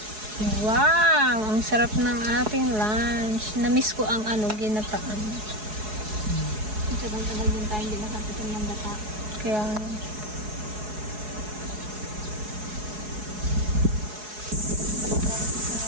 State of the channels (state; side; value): late; left; 4.7 ms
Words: Wow, ang sarap ng ating lunch. Namiss ko ang ginataan. Tagal-tagal din tayo hindi nakatikim ng gata. Kaya